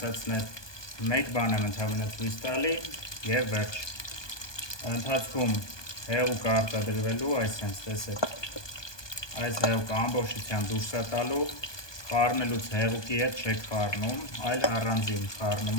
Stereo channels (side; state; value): right; late; 1.2 ms